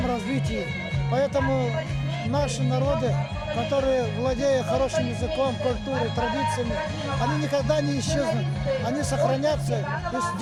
развитии. Поэтому наши народы, которые, владея хорошим языком, культурой, традициями, они никогда не исчезнут, они сохранятся и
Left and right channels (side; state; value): both; identical; correlation 1.00